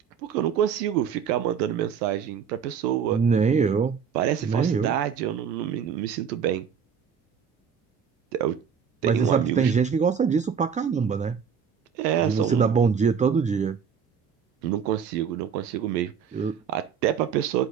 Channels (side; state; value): left; quieter; 7.1 dB